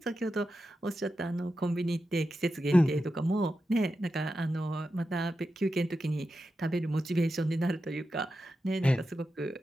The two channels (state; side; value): normal; both; correlation 0.90